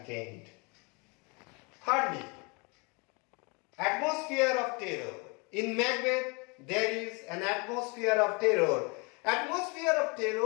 end. Thirdly, atmosphere of terror. In Macbeth, there is an atmosphere of terror. Atmosphere of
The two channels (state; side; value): quieter; right; 30.0 dB